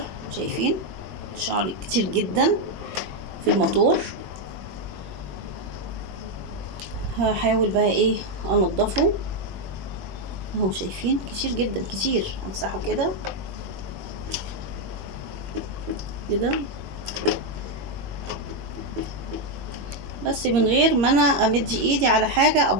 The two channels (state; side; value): late; left; 21 ms